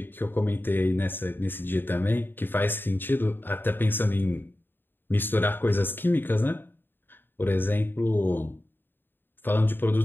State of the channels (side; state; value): right; late; 0.097 ms